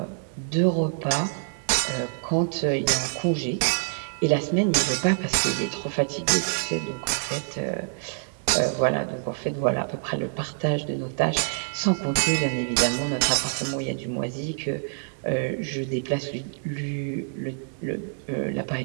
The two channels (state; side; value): silent; left; digital silence